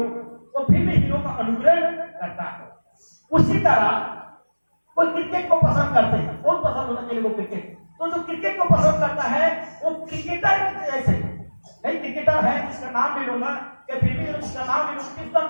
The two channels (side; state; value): both; inverted; correlation -1.00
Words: वो फिल्मी हीरो का अनुकरण करता है। उसी तरह कोई क्रिकेट को पसंद करते हैं, बहुत पसंद होता है क्रिकेट, तो जो क्रिकेट को पसंद करता है वो क्रिकेटर जैसे, कई क्रिकेटर है जिसका नाम नहीं लूंगा, या फिल्मी जिसका नाम नहीं लूंगा, किसका